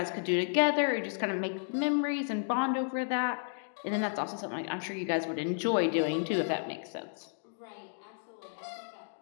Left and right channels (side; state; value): right; silent; digital silence